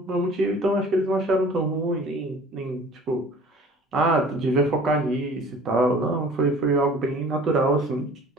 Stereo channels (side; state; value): both; normal; correlation 0.47